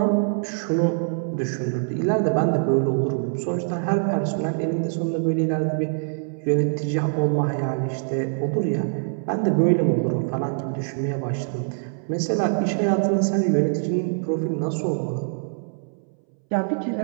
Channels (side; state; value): left; silent; 63 dB below the other